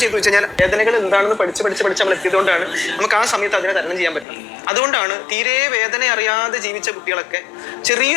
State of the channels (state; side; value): drops out; right; at 4.2 s